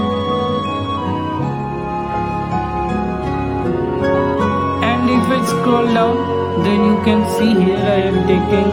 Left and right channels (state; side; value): identical; both; correlation 1.00